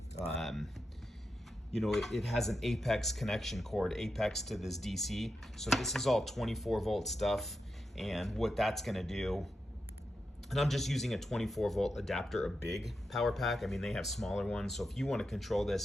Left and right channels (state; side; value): normal; both; correlation 0.88